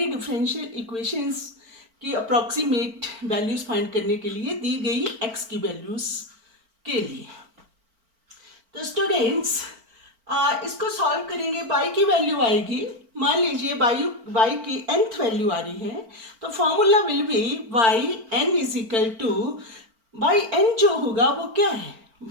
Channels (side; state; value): left; late; 4.4 ms